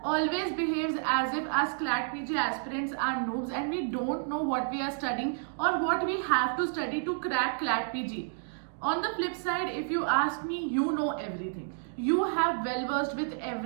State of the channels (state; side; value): silent; left; digital silence